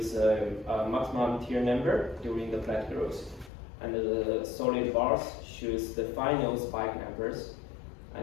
a maximum tier number during the plant growth, and the solid bars shows the final spike numbers,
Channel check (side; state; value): right; drops out; at 3.5 s